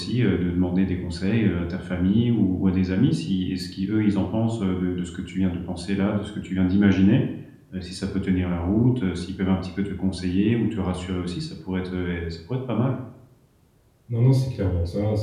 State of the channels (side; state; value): both; identical; correlation 1.00